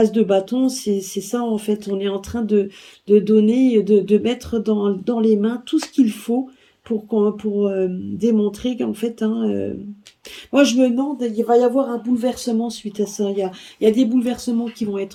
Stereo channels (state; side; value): identical; both; correlation 1.00